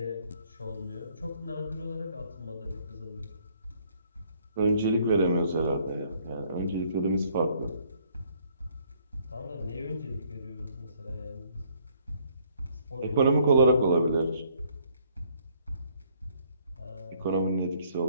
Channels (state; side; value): inverted; both; correlation -0.65